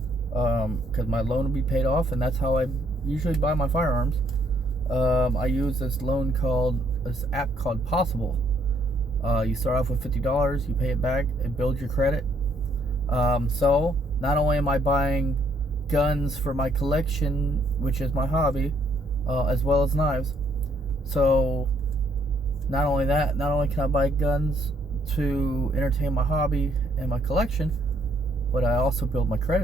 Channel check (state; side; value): normal; both; correlation 0.69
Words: because my loan will be paid off, and that's how I usually buy my firearms. I use this app called Possible. You start off with $50, you pay it back, it builds your credit. So not only am I buying guns for my collection, which is my hobby, as well as knives. So not only can I buy guns to entertain my hobby and my collection, but I also build my